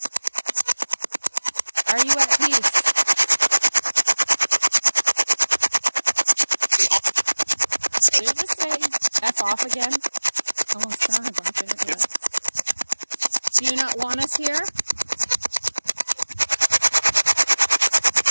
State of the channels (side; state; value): both; inverted; correlation -1.00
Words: Are you at peace? Did it just say F off again? Almost sounded like it. Yeah. Do you not want us here?